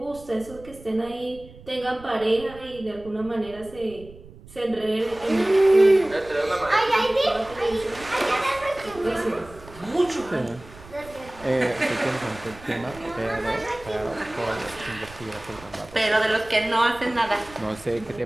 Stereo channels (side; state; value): right; noise; rumble, 20 dB below the sound